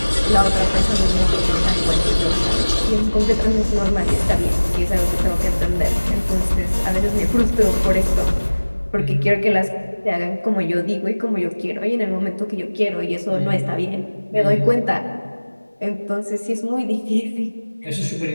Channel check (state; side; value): inverted; both; correlation -1.00